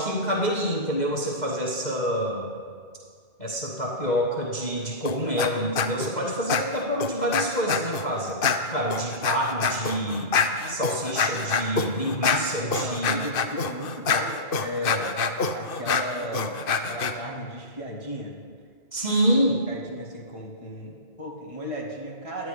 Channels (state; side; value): late; right; 2.5 ms